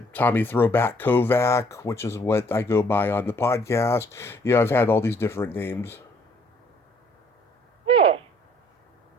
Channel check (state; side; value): normal; both; correlation 0.62